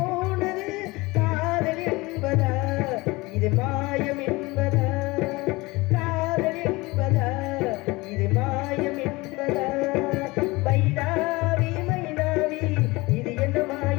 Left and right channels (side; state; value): right; quieter; 22.7 dB